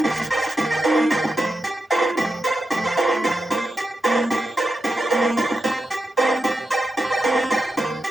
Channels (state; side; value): normal; both; correlation 0.88